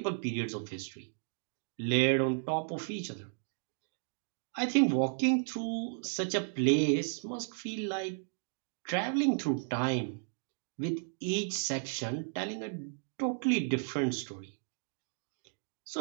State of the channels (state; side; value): silent; left; digital silence